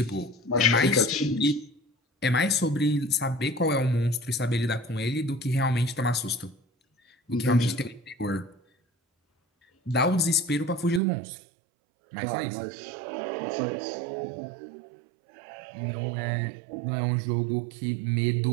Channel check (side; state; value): left; drops out; at 11.0 s